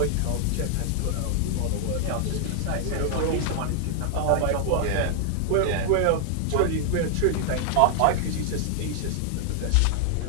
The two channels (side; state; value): both; different; correlation 0.00